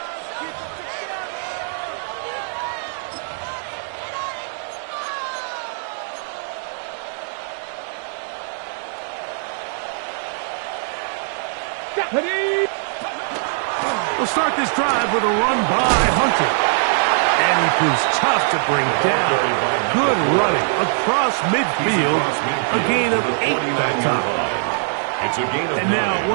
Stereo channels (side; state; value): left; silent; digital silence